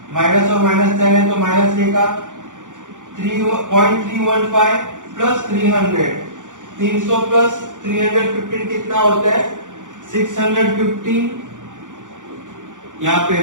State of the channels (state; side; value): late; left; 0.87 ms